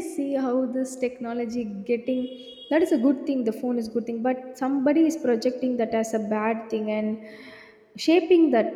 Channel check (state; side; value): identical; both; correlation 1.00